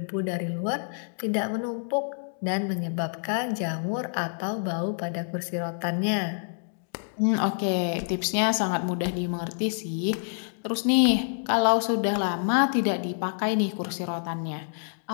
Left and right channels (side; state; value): right; silent; digital silence